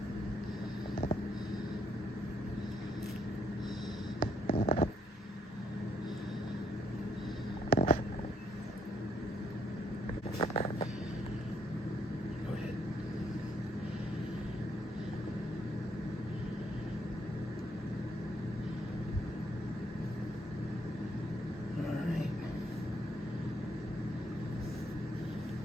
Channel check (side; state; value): both; normal; correlation 0.72